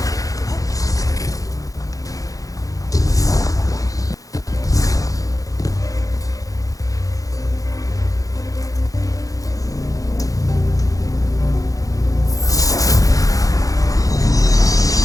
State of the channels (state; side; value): late; right; 0.17 ms